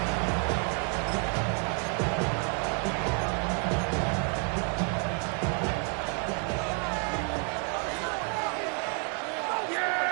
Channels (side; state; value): left; quieter; 38.5 dB